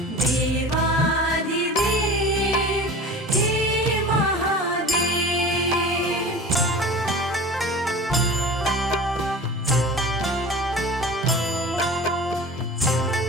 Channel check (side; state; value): both; normal; correlation 0.37